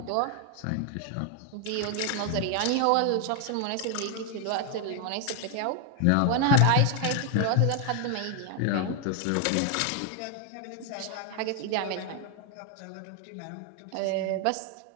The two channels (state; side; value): different; both; correlation 0.00